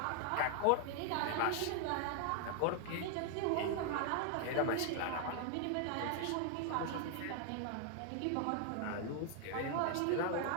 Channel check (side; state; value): both; different; correlation 0.00